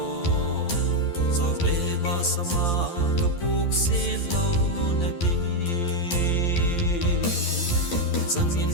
sao để ba sama cả puk xịt lâu na đi sang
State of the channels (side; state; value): right; late; 12 ms